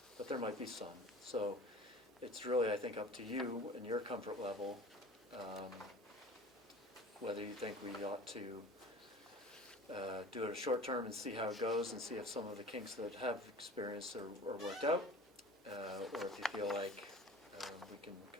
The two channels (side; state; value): both; normal; correlation 0.41